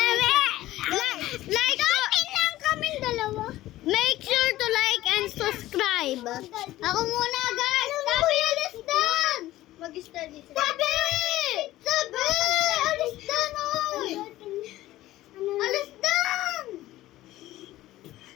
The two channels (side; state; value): right; quieter; 15.7 dB